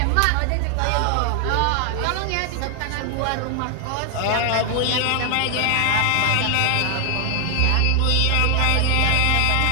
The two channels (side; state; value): both; different; correlation 0.00